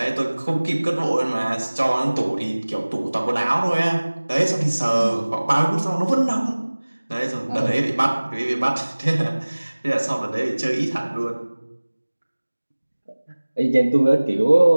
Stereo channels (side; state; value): both; inverted; correlation -1.00